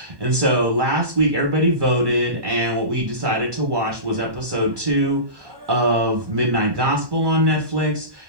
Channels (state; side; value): late; left; 1.1 ms